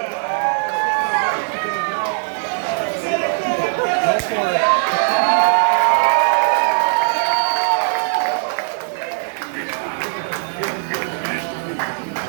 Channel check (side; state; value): left; silent; digital silence